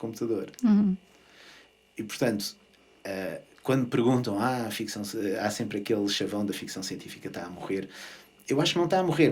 E, portanto, quando me perguntam há sempre aquele chavão da ficção científica está a morrer, eu acho que não está a morrer,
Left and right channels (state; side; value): identical; both; correlation 1.00